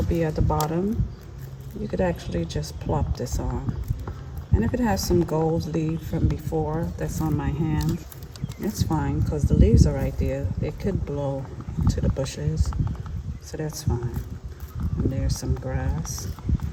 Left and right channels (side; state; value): both; identical; correlation 1.00